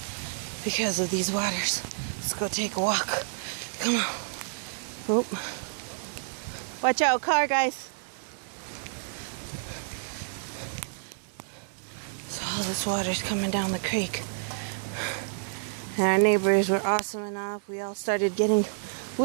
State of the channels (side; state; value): left; silent; 58 dB below the other